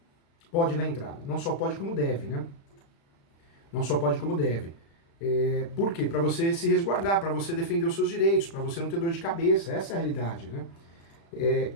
Pode dar entrada. Não só pode como deve, né? Não só pode como deve. Por quê? Para você se resguardar, para você defender os seus direitos, para você não ter dor de cabeça. Essa é a realidade, né?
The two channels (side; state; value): right; late; 36 ms